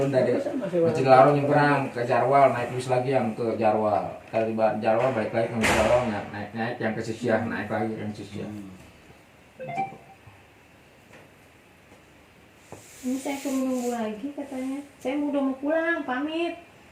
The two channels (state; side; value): identical; both; correlation 1.00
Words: dari Masjidil Haram nyebrang ke Jarwal, naik bis lagi yang ke Jarwal. Kali Jarwal balik lagi ke Jarwal, naik yang ke Sisyah, naik lagi yang Sisyah. Ini saya suruh nunggu lagi katanya. Saya udah mau pulang, pamit.